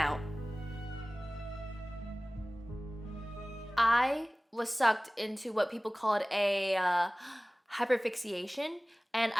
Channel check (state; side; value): normal; both; correlation 0.98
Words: I was sucked into what people called a hyperfixation, and